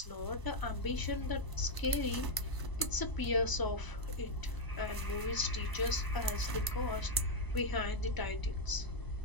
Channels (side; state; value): right; late; 1.0 ms